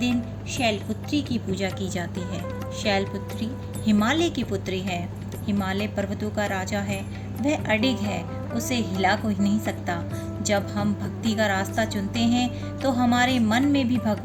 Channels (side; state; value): both; identical; correlation 1.00